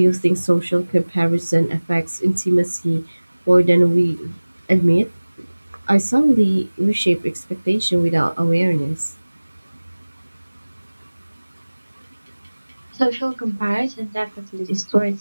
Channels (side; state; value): both; inverted; correlation -1.00